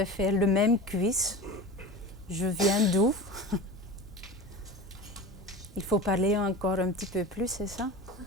faire le même quiz. Je viens d'où? Il faut parler encore un petit peu plus, c'est ça?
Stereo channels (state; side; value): normal; both; correlation 0.32